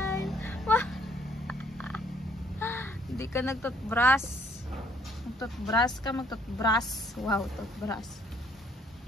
Hindi ka nagtutbrush. Magtutbrush ka, magtutbrush. Wow, toothbrush.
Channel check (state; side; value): normal; both; correlation 0.63